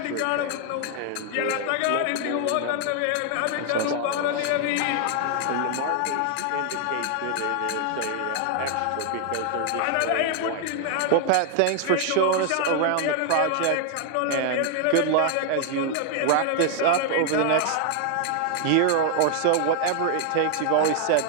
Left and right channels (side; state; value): both; different; correlation 0.00